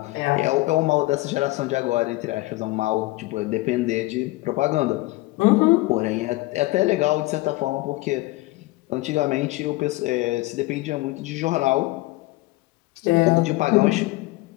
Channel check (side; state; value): right; quieter; 19.9 dB